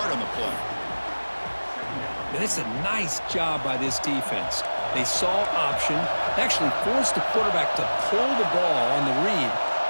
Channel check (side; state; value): both; inverted; correlation -1.00